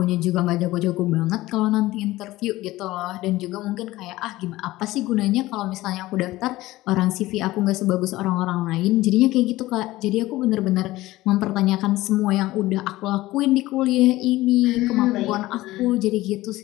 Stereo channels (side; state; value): right; quieter; 17.7 dB